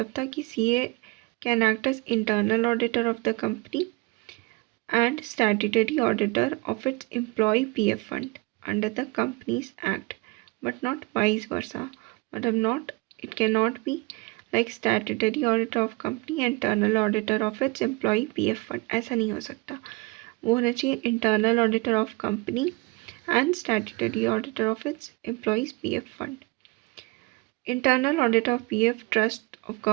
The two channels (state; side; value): quieter; left; 25.7 dB